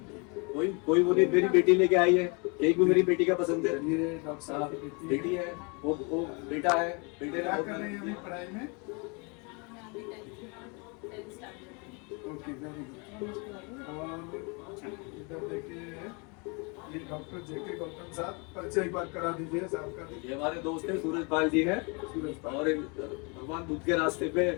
कोई वो नहीं, मेरी बेटी लेके आई है केक, भी मेरी बेटी का पसंद है। ये डॉक्टर साहब की बेटी है, वो बेटा है, बेटे क्या ने कर रहे हैं अभी पढ़ाई में? Okay, very good. और इधर देखिए, ये डॉक्टर जेके गौतम साहब, परिचय एक बार करा दीजिए साहब का। ये हमारे दोस्त हैं, सूरज पाल जी है, और भगवान बुद्ध के रास्ते पे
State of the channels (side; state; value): right; quieter; 32.3 dB